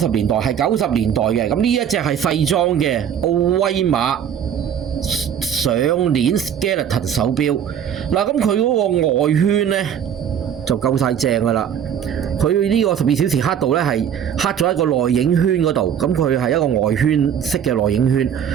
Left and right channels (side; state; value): left; quieter; 8.8 dB